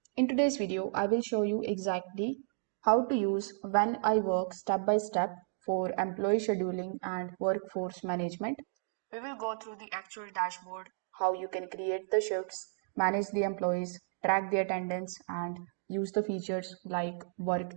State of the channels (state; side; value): silent; left; digital silence